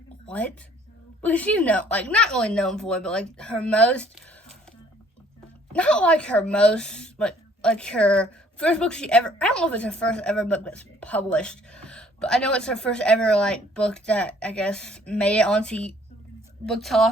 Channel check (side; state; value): both; normal; correlation 0.59